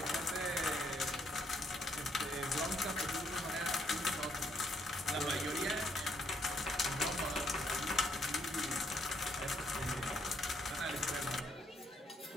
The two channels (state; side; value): normal; both; correlation 0.71